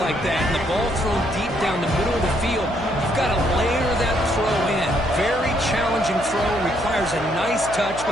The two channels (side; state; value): left; noise; hum, 13 dB below the sound